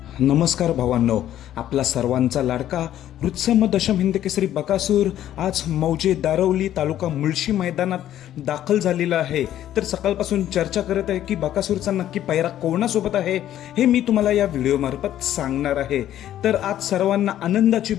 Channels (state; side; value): quieter; right; 11.9 dB